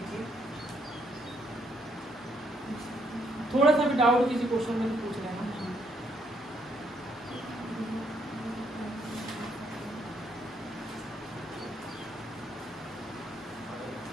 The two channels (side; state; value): both; normal; correlation 0.72